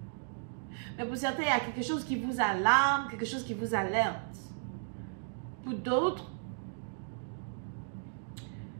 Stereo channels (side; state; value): left; silent; digital silence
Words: Mais pour certains, il y a quelque chose qui vous alarme, quelque chose qui vous alerte. Pour d'autres,